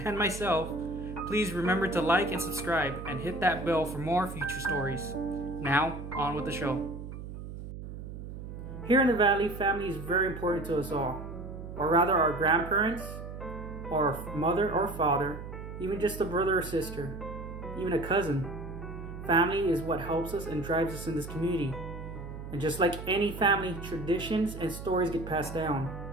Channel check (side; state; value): right; noise; hum, 10 dB below the sound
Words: myself, please remember to like and subscribe and hit that bell for more future stories. Now, on with the show. Here in the valley, family is very important to us all. Or rather, our grandparents, or mother or father, even just a brother or sister, even a cousin. Family is what helps us and drives us in this community. And just like any family, traditions and stories get passed down.